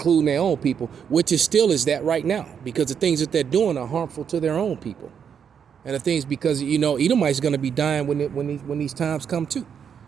their own people, which is still is that right now, because the things that they're doing are harmful to their own people, and the things because Edomite's going to be dying when these times come too.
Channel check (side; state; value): left; quieter; 7.5 dB